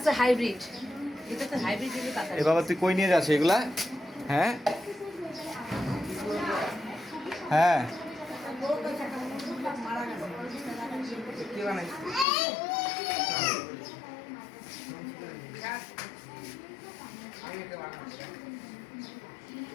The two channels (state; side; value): drops out; right; at 12.2 s